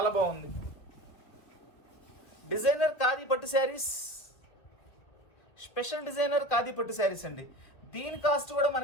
బాగుంది. డిజైనర్ ఖాదీ పట్టు శారీస్, స్పెషల్ డిజైనర్ ఖాదీ పట్టు శారీస్ అండి. దీని కాస్ట్ కూడా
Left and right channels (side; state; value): right; late; 2.1 ms